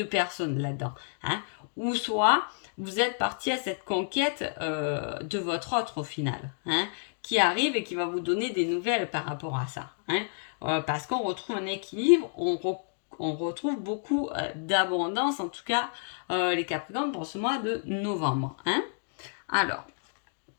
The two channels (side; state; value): right; silent; digital silence